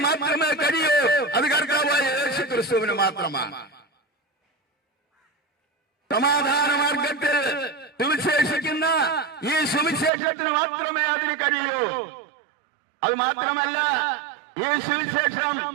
മാത്രമേ കഴിയൂ. അത് കർത്താവായ യേശു ക്രിസ്തുവിന് മാത്രമാണ്. സമാധാന മാർഗത്തിൽ സുവിശേഷിക്കുന്ന ഈ സുവിശേഷത്തിന് മാത്രമേ അതിന് കഴിയൂ. അത് മാത്രമല്ല, ഈ സുവിശേഷം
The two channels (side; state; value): left; drops out; at 10.1 s